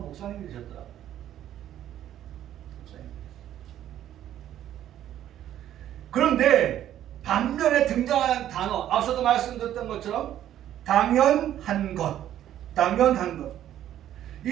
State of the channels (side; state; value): left; quieter; 11.6 dB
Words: 목사님이셨더라고요. 그런데 반면에 등장하는 단어, 앞서도 말씀드렸던 것처럼 당연한 것, 당연한 것.